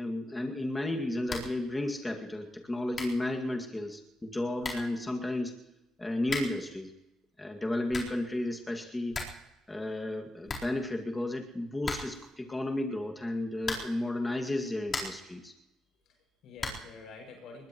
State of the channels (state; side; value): normal; both; correlation 0.91